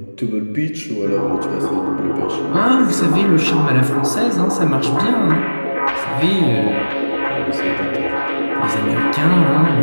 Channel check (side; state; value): both; inverted; correlation -1.00